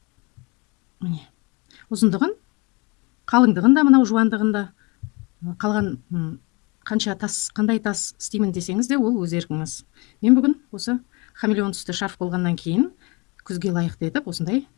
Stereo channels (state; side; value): quieter; right; 26.8 dB